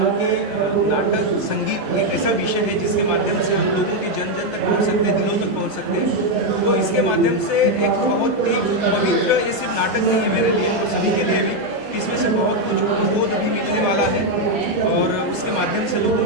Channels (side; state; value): both; normal; correlation 0.03